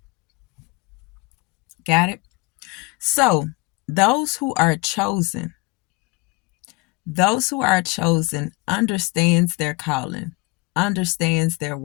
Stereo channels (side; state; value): right; quieter; 26.0 dB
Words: Got it? So, those who are chosen, those who are chosen understands their calling, understands their